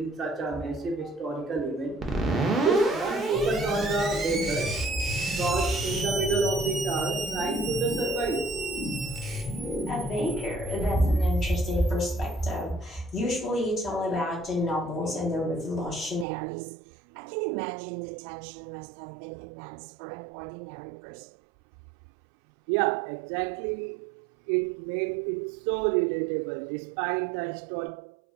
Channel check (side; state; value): left; drops out; at 16.2 s